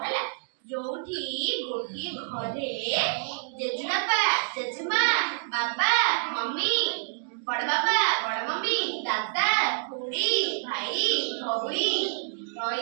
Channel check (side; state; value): left; silent; digital silence